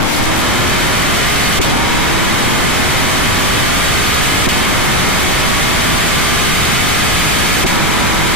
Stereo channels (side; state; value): both; normal; correlation 0.13